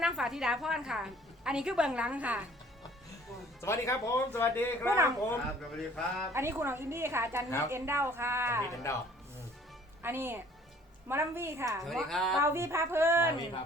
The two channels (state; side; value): normal; both; correlation 0.55